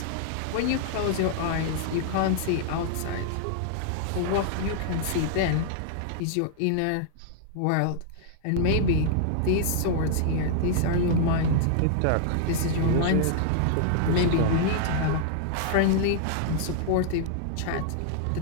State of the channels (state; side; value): different; both; correlation -0.01